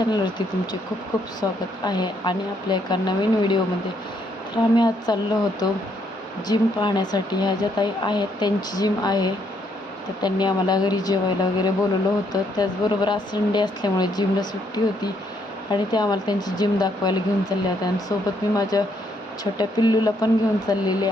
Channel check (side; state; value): both; normal; correlation 0.72